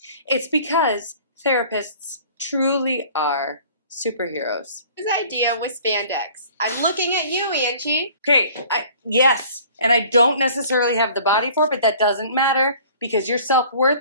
It's because therapists truly are superheroes. His idea was spandex. I'm looking at you, Angee. Okay, yes, and I don't necessarily have the body for it, but that doesn't matter because your self-worth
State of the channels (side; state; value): both; inverted; correlation -0.50